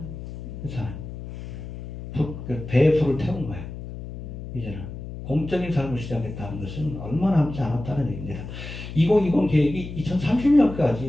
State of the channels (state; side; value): noise; left; hum, 9 dB below the sound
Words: 그렇잖아요. 배에 불을 태운 거예요. 이제는 공적인 삶을 시작했다는 것은 얼마 남지 않았다는 얘기입니다. 2020 계획이